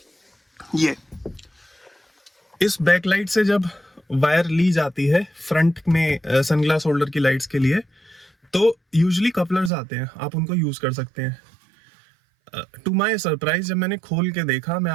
ये इस बैकलाइट से जब वायर ली जाती है फ्रंट में सनग्लास होल्डर की लाइट्स के लिए, तो यूजुअली कपलर्स आते हैं, आप उनको यूज कर सकते हैं। टू माय सरप्राइज जब मैंने खोल के देखा, मैं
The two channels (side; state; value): left; drops out; at 9.7 s